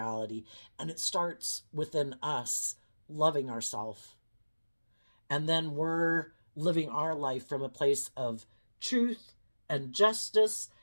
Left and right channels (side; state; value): both; inverted; correlation -1.00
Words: And it starts within us loving ourselves. And then we're living our life from a place of truth and justice